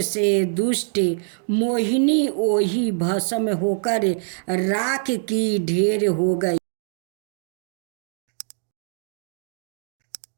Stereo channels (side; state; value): left; silent; digital silence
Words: दुष्ट मोहिनी ओही भस्म होकर राख की ढेर हो गई।